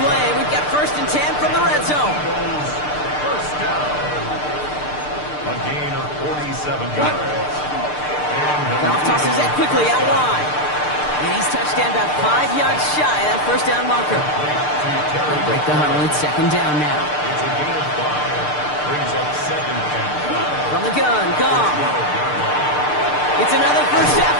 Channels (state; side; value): late; right; 6.7 ms